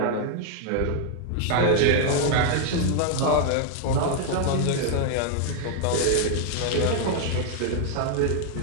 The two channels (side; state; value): both; different; correlation 0.00